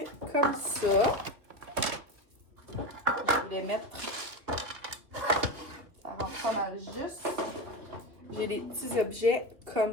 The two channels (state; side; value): late; left; 2.6 ms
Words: comme ça. Je voulais mettre... Ça rentre pas mal juste. J'ai des petits objets